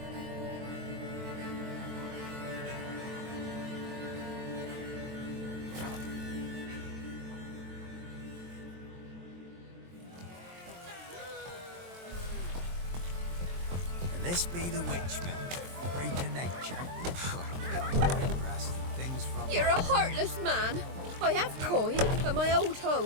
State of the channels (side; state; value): left; late; 23 ms